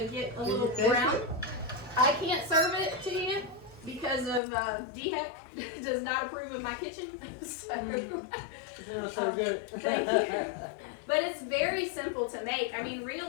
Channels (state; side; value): drops out; right; at 4.4 s